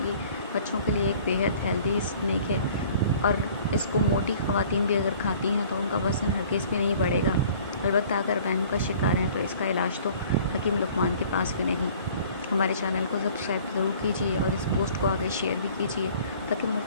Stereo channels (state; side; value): inverted; both; correlation -0.51